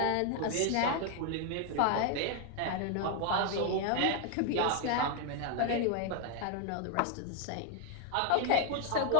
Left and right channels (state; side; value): different; both; correlation 0.01